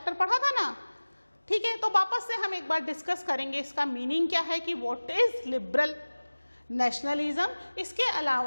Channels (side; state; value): both; inverted; correlation -1.00